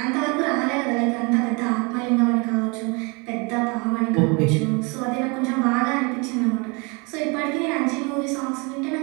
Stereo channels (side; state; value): left; quieter; 30.2 dB